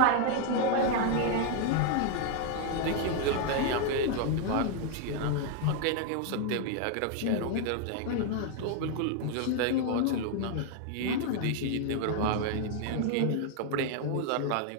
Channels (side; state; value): both; different; correlation 0.00